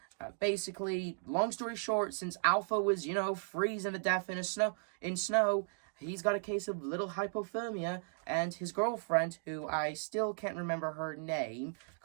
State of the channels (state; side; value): silent; left; digital silence